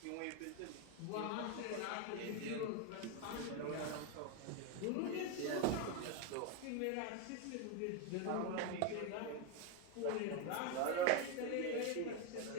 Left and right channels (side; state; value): both; different; correlation 0.02